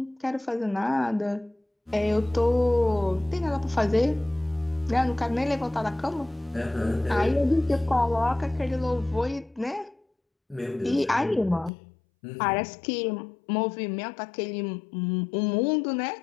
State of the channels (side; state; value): right; drops out; at 11.7 s